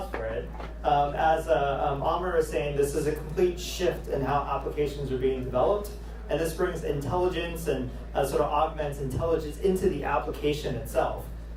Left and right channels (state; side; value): identical; both; correlation 1.00